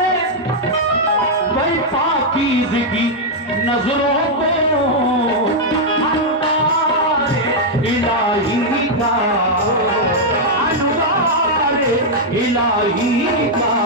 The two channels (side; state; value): both; normal; correlation -0.03